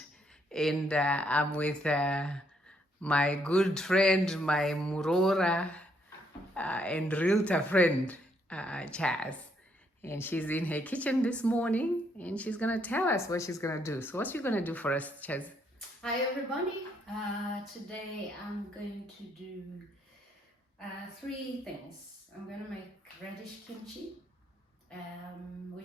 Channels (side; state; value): both; normal; correlation 0.72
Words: And I'm with my good friend, my Murora and realtor friend, Chazz. And she's in her kitchen this morning and she's going to tell us what she's going to do. So, what's she going to do for us, Chazz? Hi, everybody. Today I'm going to do three things. I'm going to make radish kimchi,